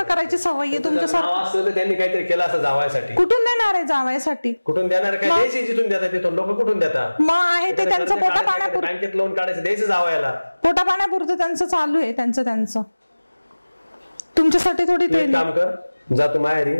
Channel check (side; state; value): both; inverted; correlation -1.00